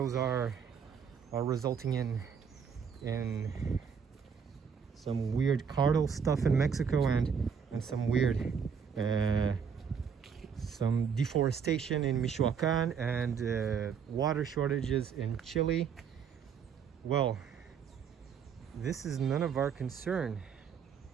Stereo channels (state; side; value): quieter; left; 6.8 dB